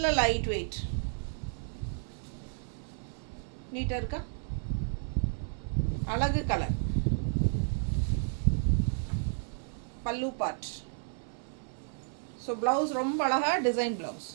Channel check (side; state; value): left; silent; 56 dB below the other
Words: லைட் வெயிட், நீட்டாக இருக்கா? அழகு கலர், பல்லு பார்ட். ஸோ ப்ளவுஸ் ரொம்ப அழகாக டிசைன் ப்ளவுஸ்,